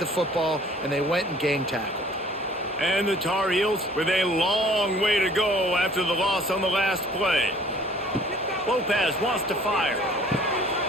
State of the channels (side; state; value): both; normal; correlation 0.53